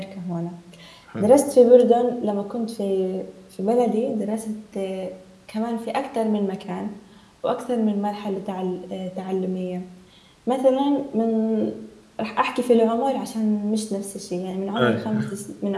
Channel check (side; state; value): both; identical; correlation 1.00